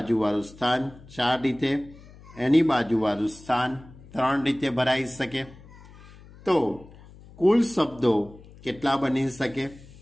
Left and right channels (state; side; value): noise; left; hum, 21 dB below the sound